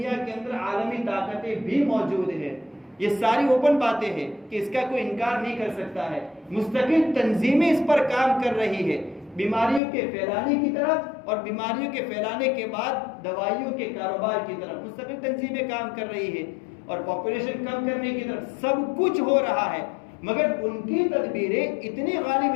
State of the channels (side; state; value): right; drops out; at 9.8 s